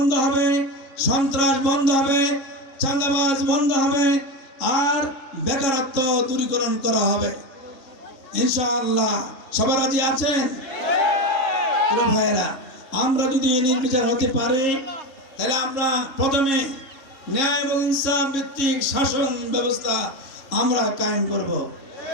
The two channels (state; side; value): late; right; 3.6 ms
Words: হবে, সন্ত্রাস বন্ধ হবে, চাঁদাবাজ বন্ধ হবে, আর বেকারত্ব দূরীকরণ করা হবে ইনশাআল্লাহ। সবাই রাজি আছেন? ভাইয়েরা, আমরা যদি নির্বিচার হতে পারি, তাহলে আমরা প্রথমে ন্যায় এবং ইনসাফ ভিত্তিক শাসন ব্যবস্থা আমরা কায়েম করব।